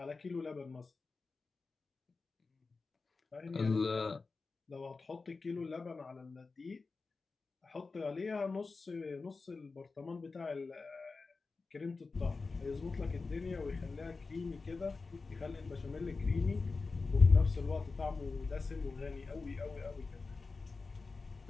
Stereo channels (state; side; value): quieter; right; 4.1 dB